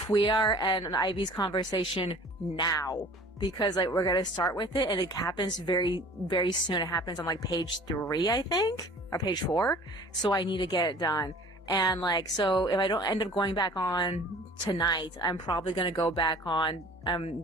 and Ivy's conversation now, because like we're gonna start with it, and it happens very, very soon. It happens on like page 3, I think, or page 4. So I need to get it done. And like, so if I don't end up going back on tonight, I'm probably gonna go back on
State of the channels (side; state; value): both; normal; correlation 0.47